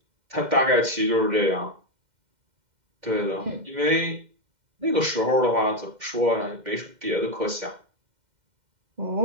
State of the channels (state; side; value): late; left; 2.1 ms